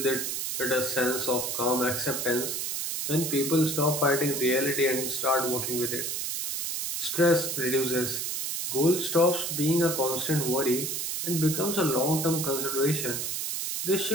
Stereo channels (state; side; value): noise; right; hiss, 2 dB below the sound